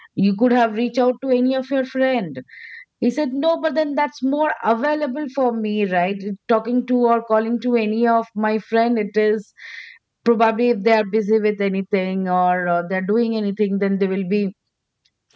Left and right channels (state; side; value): identical; both; correlation 1.00